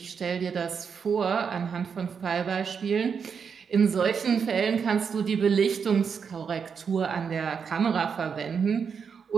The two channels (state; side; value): quieter; left; 6.4 dB